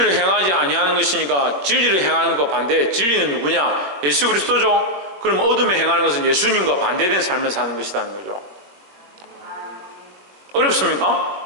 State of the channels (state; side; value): late; left; 21 ms